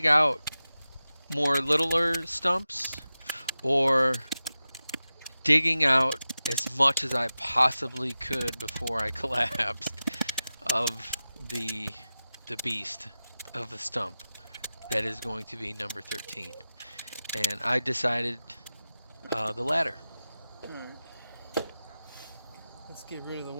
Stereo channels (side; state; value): both; inverted; correlation -0.94